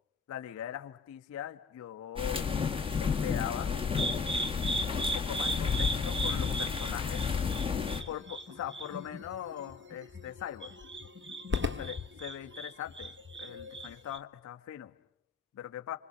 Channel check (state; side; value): quieter; right; 4.4 dB